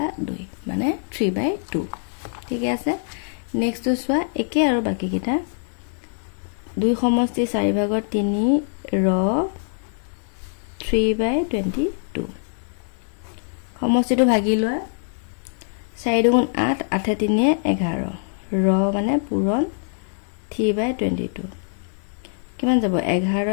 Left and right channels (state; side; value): silent; right; 57 dB below the other